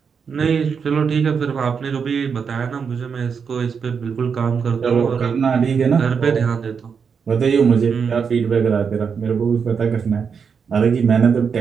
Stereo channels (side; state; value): left; quieter; 6.2 dB